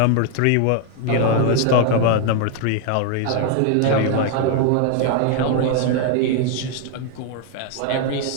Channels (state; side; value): different; both; correlation 0.00